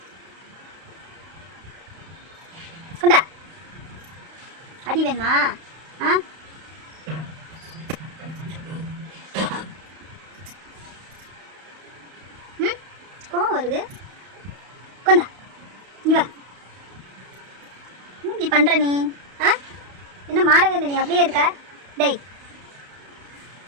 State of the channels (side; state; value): left; late; 32 ms